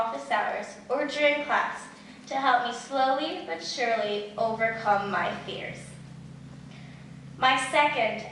hours or during class to help me slowly but surely overcome my fears. My second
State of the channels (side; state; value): both; identical; correlation 1.00